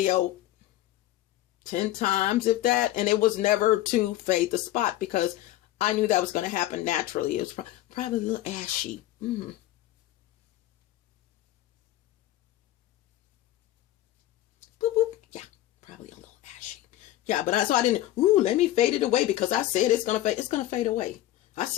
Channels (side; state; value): right; quieter; 14.6 dB